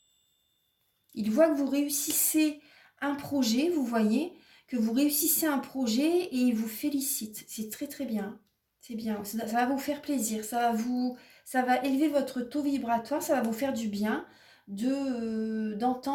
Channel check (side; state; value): both; identical; correlation 1.00